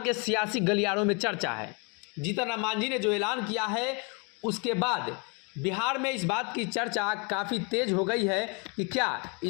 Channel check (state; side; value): quieter; right; 33.1 dB